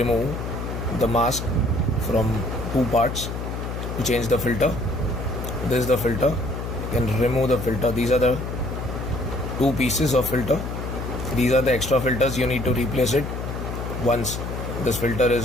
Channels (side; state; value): left; noise; hum, 5 dB below the sound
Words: the mask from two parts to change the filter. This is the filter. You can remove the filter. These are the two pieces of filter. These are the extra filters. You need to replace it once this filter